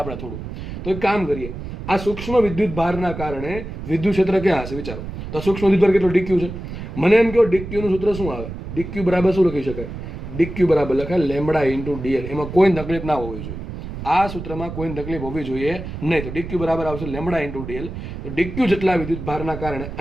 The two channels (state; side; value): noise; right; rumble, 9 dB below the sound